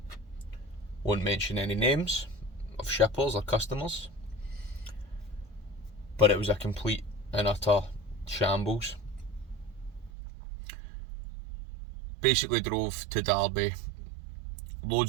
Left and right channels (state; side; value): drops out; left; at 10.1 s